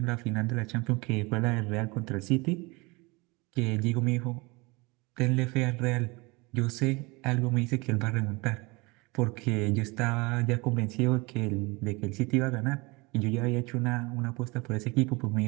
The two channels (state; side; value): quieter; left; 25.8 dB